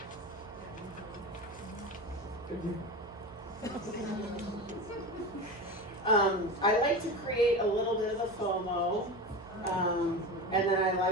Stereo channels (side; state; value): right; noise; hum, 21 dB below the sound